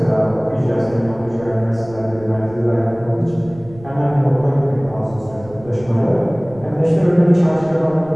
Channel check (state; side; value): noise; right; rumble, 20 dB below the sound